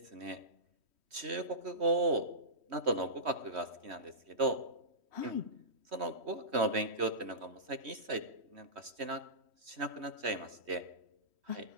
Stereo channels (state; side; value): late; left; 3.1 ms